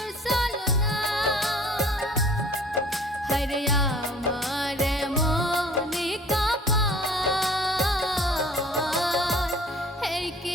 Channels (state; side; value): normal; both; correlation 0.51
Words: ছলনা। হায়রে আমার